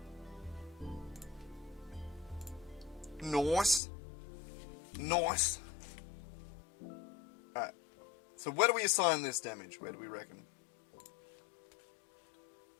Nice. Nice. Alright. So where do we assign this damage? Where do we reckon?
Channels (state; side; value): drops out; right; at 3.8 s